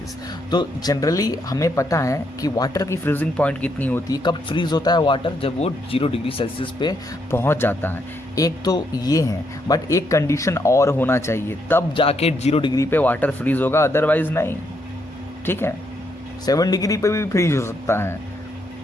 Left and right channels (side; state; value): both; normal; correlation 0.76